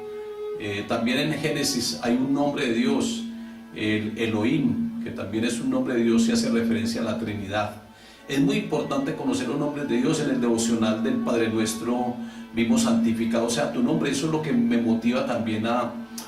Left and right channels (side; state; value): both; identical; correlation 1.00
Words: También en Génesis hay un nombre de Dios, el Elohim, que también es un nombre de Dios y hace referencia a la Trinidad. Es muy importante conocer los nombres de Dios. En el devocional del Padre Nuestro vimos santificado sea tu nombre. Eso es lo que me motiva también a